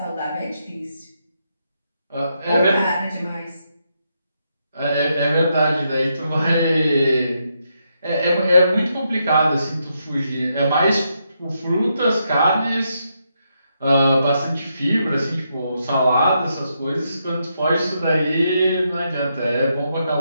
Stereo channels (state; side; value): inverted; both; correlation -0.80